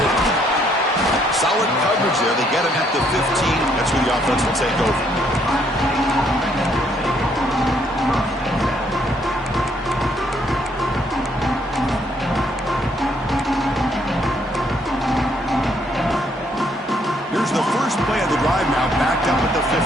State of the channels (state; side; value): normal; both; correlation 0.69